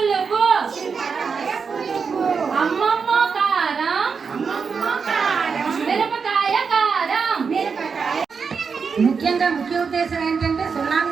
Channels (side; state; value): left; quieter; 5.6 dB